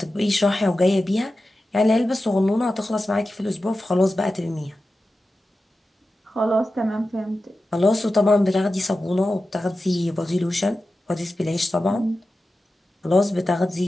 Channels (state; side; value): normal; both; correlation 0.93